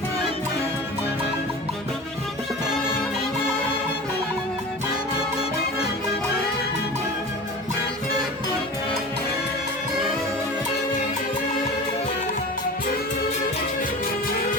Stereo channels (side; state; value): both; normal; correlation 0.34